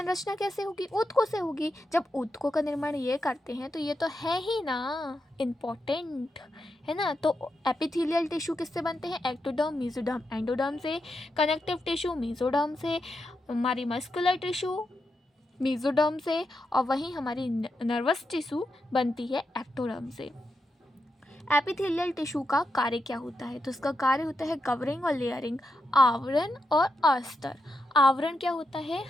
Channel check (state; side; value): normal; both; correlation 0.86